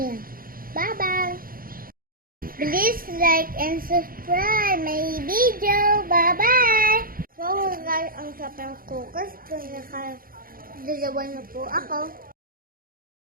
Bye-bye! Please like and subscribe my video. Bye-bye! So guys, ang sapang focus kung nakadalawa na po ako.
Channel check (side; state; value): left; late; 0.42 ms